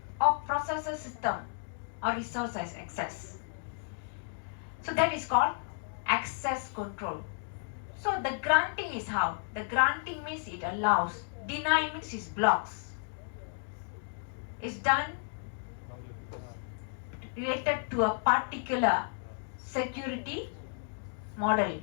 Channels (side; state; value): right; silent; digital silence